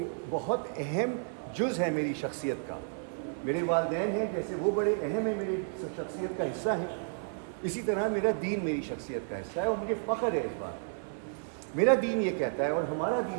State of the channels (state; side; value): silent; left; 57 dB below the other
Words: بہت اہم جز ہے میری شخصیت کا. میرے والدین ہیں، جیسے وہ بڑے اہم ہیں، میری شخصیت کا حصہ ہیں، اسی طرح میرا دین میری شخصیت کا حصہ ہے، اور مجھے فخر ہے اس بات. میرا دین یہ کہتا ہے اور ہمارا